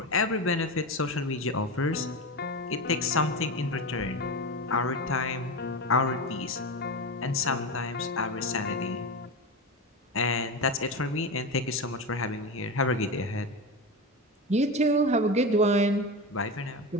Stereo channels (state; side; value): normal; both; correlation 0.20